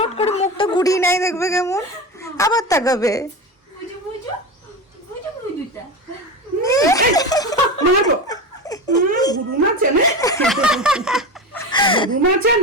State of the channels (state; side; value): normal; both; correlation 0.23